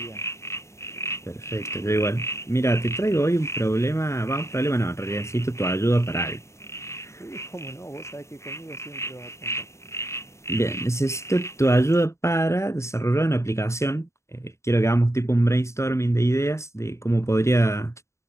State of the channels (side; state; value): right; late; 0.14 ms